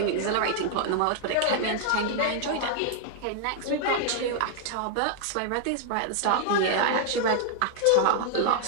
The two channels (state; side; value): different; both; correlation 0.00